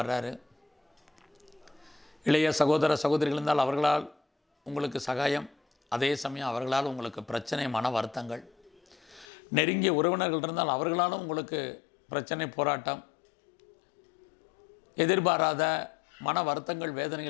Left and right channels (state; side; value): drops out; right; at 9.2 s